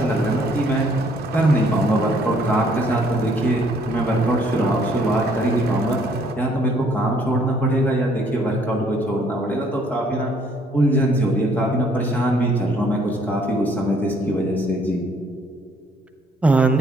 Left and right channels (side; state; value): both; normal; correlation 0.64